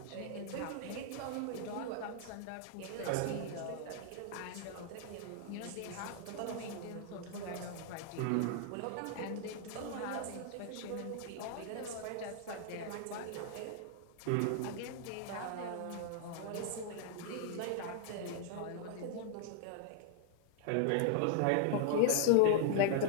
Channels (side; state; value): both; different; correlation -0.01